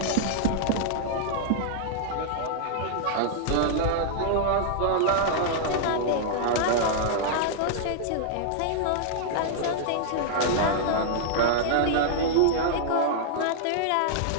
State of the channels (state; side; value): different; both; correlation -0.01